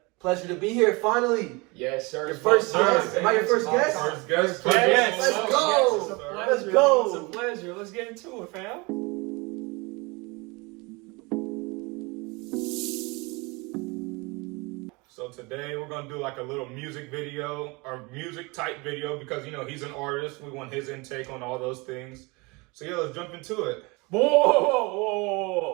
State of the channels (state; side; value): quieter; left; 26.7 dB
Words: pleasure to be here finally. Yes, sir. Your first guest. Am I your first guest? First guest. Yes. Let's go. It's a pleasure. Let's go. It's a pleasure. Let's get into it, fam. So today we're gonna do like a little music video or music type video because he's an artist. We want his intake on all those things. So yeah, let's jump into it.